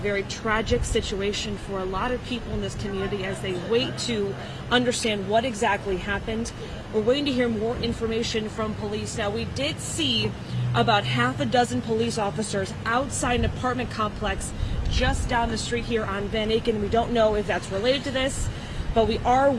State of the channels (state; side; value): identical; both; correlation 1.00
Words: tragic situation for a lot of people in this community as they wait to understand what exactly happened. We're waiting to hear more information from police. Now, we did see about half a dozen police officers outside an apartment complex just down the street here on Van Aken. We don't know if that's related to this, but we are